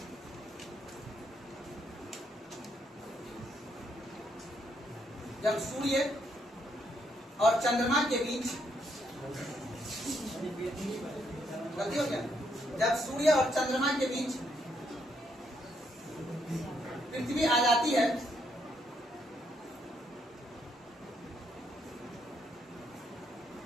सूर्य और चंद्रमा के बीच, गलती हो गया, जब सूर्य और चंद्रमा के बीच पृथ्वी आ जाती है,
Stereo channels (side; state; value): both; normal; correlation 0.75